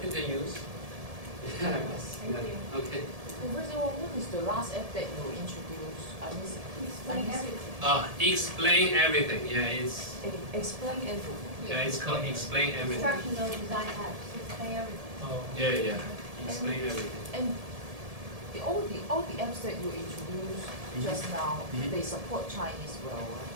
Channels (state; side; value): late; left; 1.7 ms